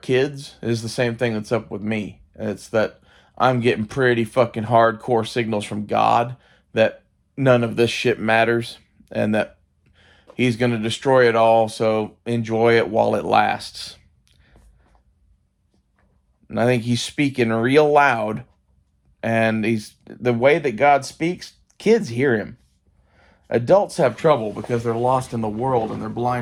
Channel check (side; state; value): both; identical; correlation 1.00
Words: is the same thing that's up with me. It's that I'm getting pretty fucking hardcore signals from God that none of this shit matters and that He's going to destroy it all, so enjoy it while it lasts. And I think He's speaking real loud, and the way that God speaks, kids hear Him. Adults have trouble because they're lost in the world and they're